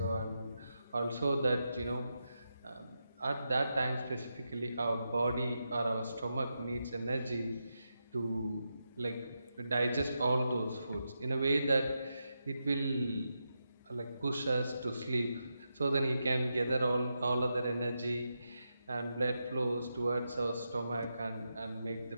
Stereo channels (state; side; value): inverted; both; correlation -0.87